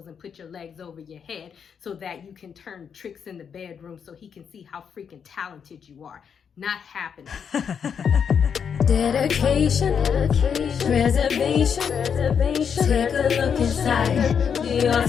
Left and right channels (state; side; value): quieter; right; 7.1 dB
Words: and put your legs over your head so that you can turn tricks in the bedroom so he can see how freaking talented you are. Not happening. Dedication, preservation, take a look inside your